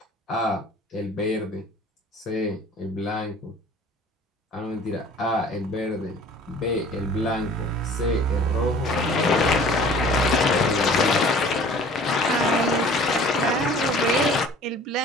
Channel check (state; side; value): normal; both; correlation 0.48